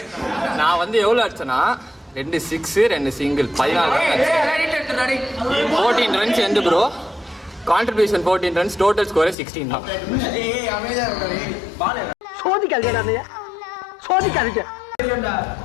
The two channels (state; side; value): drops out; right; at 9.3 s